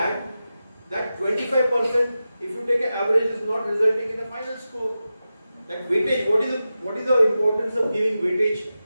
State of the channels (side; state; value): both; inverted; correlation -0.92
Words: 25%, if you take an average, is not resulting in a final score. Like weightage, what is the importance of giving weightage?